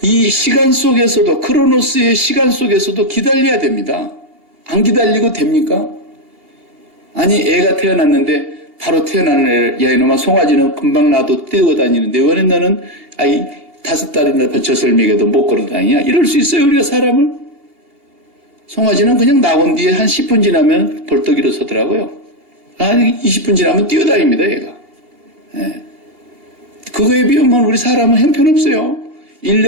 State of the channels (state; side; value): late; left; 2.8 ms